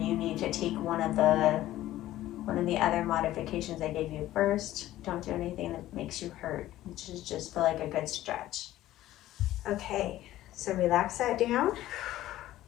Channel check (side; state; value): right; quieter; 14.6 dB